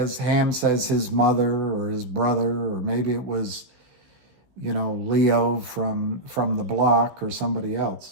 Ham says, his mother or his brother, or maybe it was, Leo from the block or somebody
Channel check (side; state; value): left; late; 16 ms